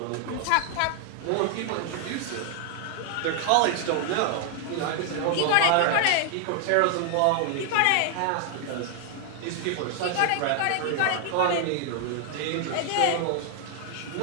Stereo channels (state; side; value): different; both; correlation 0.00